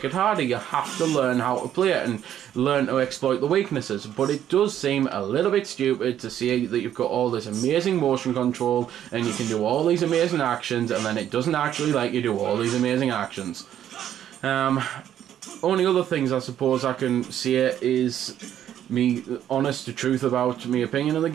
it harder. You have to learn how to play it and learn to exploit the weaknesses, but it does seem a little bit stupid to see that you've got all this amazing motion control and you can do all these amazing actions, and then it doesn't actually let you do all these amazing actions. Only other things I suppose I can say is me honest to truth about my opinion of the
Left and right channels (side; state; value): left; quieter; 10.7 dB